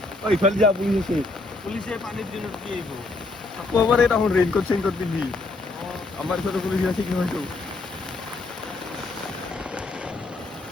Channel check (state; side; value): quieter; right; 3.2 dB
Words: ইফালে যা পুলিচ আছে পুলিশে পানিৰ দিনত কি আইবো আকৌ এবাৰ এই তখন ৰেইনকোট চেইনকোট পিন্ধি আমাৰ ওচৰতে পুলিচ আছে কি হয়তো